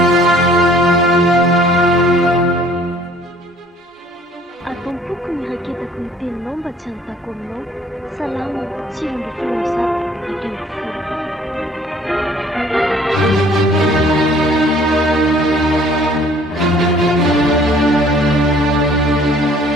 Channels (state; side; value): normal; both; correlation 0.56